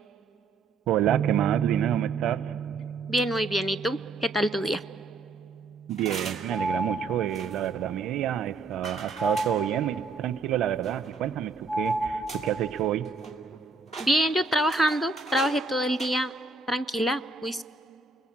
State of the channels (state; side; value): quieter; left; 4.2 dB